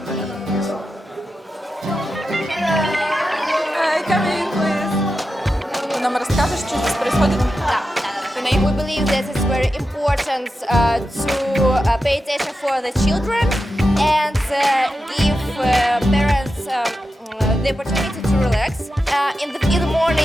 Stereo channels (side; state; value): both; normal; correlation 0.90